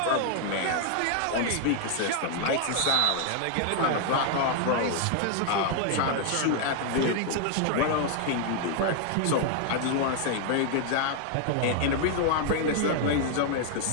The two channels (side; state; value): both; different; correlation 0.00